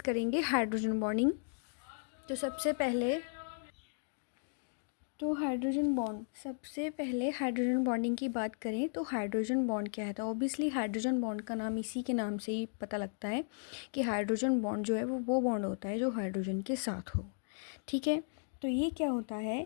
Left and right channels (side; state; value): right; silent; digital silence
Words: हाइड्रोजन बॉन्डिंग। तो सबसे पहले हाइड्रोजन बॉन्डिंग की बात करें तो हाइड्रोजन बॉन्ड क्या है। तो ऑब्वियसली हाइड्रोजन बॉन्ड का नाम इसी के नाम से ही पता लगता है कि हाइड्रोजन बॉन्ड जो है वो बॉन्ड होता है जो हाइड्रोजन के साथ हो। ठीक है, तो ये क्या होता है,